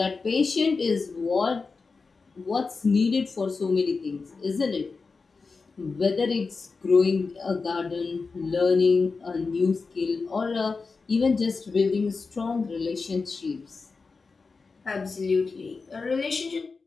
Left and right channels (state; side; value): quieter; right; 4.4 dB